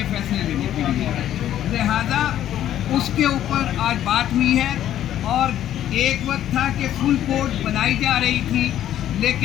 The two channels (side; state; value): right; quieter; 11.6 dB